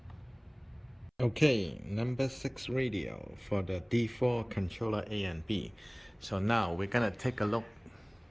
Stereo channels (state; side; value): identical; both; correlation 1.00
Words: Okay, number 6 radio for the D4 controller A and B. So now we're gonna take a look